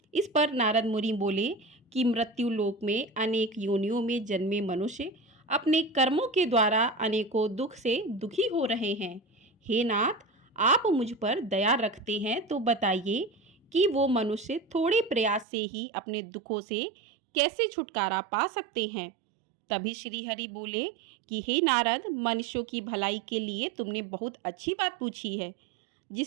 इस पर नारद मुनि बोले कि मृत्यु लोक में अनेक योनियों में जन्मे मनुष्य अपने कर्मों के द्वारा अनेकों दुख से दुखी हो रहे हैं। हे नाथ, आप मुझ पर दया रखते हैं तो बताइए कि वो मनुष्य थोड़े प्रयास से ही अपने दुखों से कैसे छुटकारा पा सकते हैं। तभी श्री हरि बोले कि हे नारद, मनुष्यों की भलाई के लिए तुमने बहुत अच्छी बात पूछी है,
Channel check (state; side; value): drops out; left; at 15.5 s